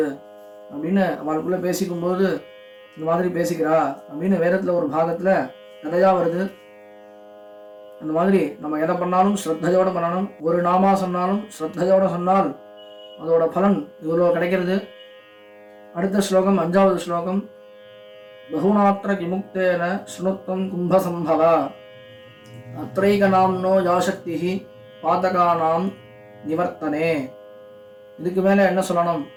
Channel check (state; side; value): identical; both; correlation 1.00